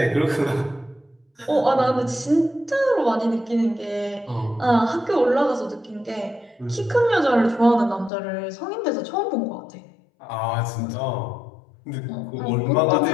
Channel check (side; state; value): right; drops out; at 8.1 s